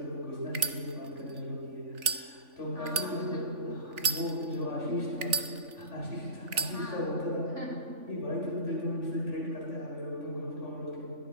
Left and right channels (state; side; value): late; left; 3.5 ms